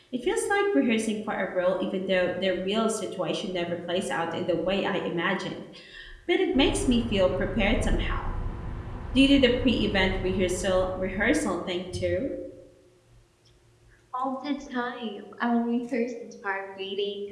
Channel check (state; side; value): identical; both; correlation 1.00